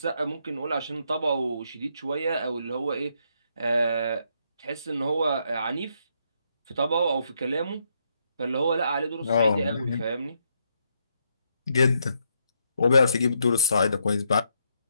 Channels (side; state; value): both; inverted; correlation -0.76